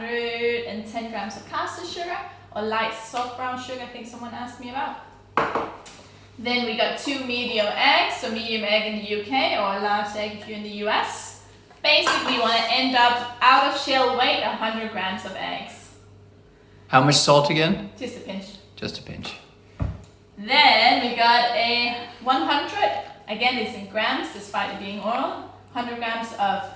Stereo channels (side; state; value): both; identical; correlation 1.00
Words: grams of caster sugar, or light soft brown sugar, I think someone asked me about. Then we got 2 medium eggs, so medium egg in the UK, or a large egg if you're in the US. Basically, you want to end up out of shell weight 100 grams of eggs. How much salt again? Just a pinch. Just a pinch. Then we got a 100, again it's in grams despite it being oil, 100 grams of